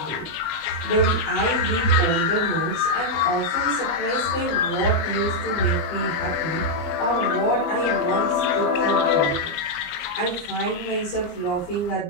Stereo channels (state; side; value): late; right; 19 ms